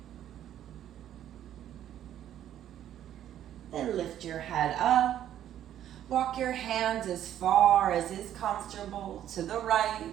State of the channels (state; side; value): quieter; left; 11.2 dB